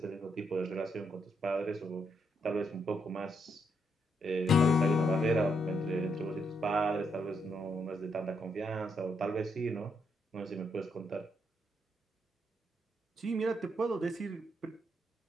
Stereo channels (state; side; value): normal; both; correlation 0.77